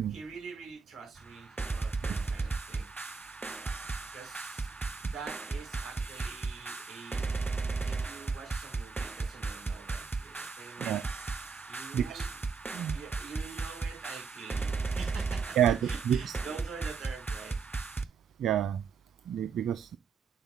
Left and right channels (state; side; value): quieter; left; 5.6 dB